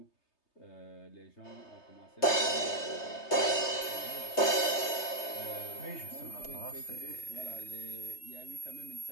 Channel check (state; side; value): late; right; 3.3 ms